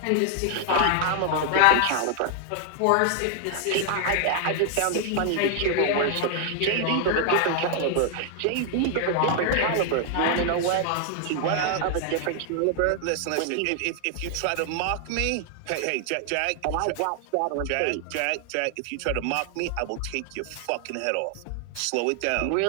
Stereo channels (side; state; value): both; different; correlation 0.00